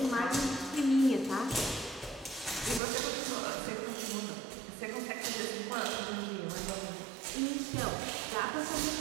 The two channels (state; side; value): drops out; left; at 2.8 s